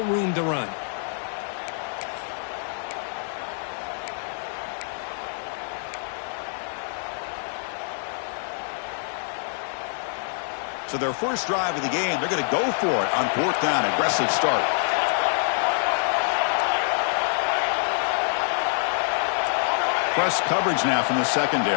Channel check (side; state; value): right; silent; 55 dB below the other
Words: room to run. So their first drive of the game, they're going to go for it on 4th down. Aggressive start. Press coverage now from the